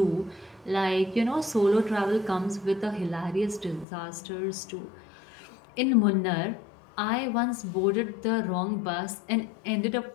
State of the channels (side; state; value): right; drops out; at 3.9 s